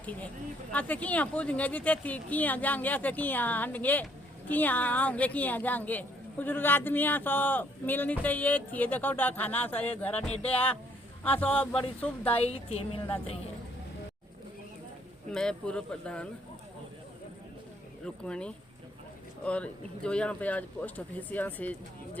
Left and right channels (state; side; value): normal; both; correlation 0.67